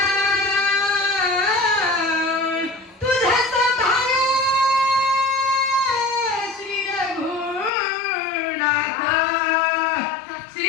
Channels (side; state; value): right; drops out; at 7.7 s